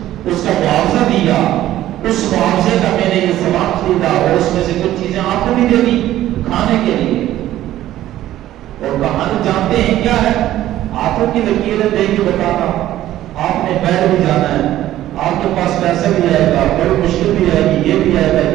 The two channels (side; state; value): left; quieter; 13.7 dB